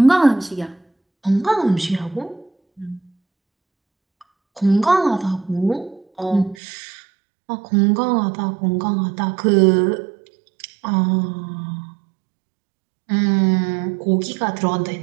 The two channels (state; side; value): drops out; left; at 6.6 s